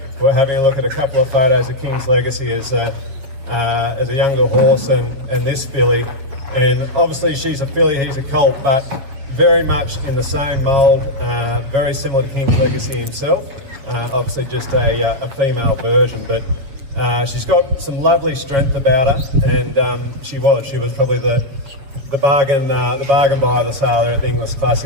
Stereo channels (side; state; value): left; late; 7.7 ms